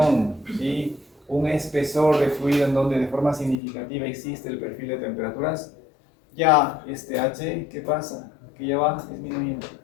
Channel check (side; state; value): right; drops out; at 3.6 s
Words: ¿sí?, un espesor de fluido en donde de forma significativa existe el perfil de temperaturas, ya este H, ¿qué pasa? Que ya va disminuyendo.